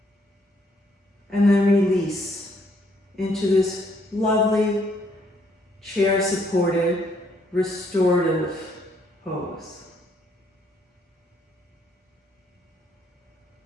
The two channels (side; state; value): both; normal; correlation 0.69